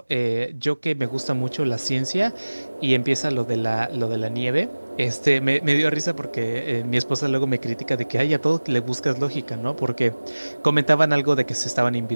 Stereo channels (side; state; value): both; inverted; correlation -1.00